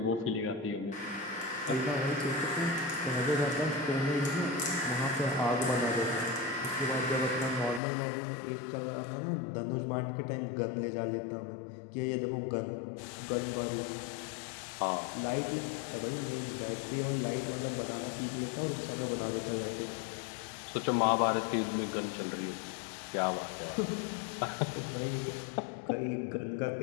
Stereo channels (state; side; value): drops out; right; at 7.8 s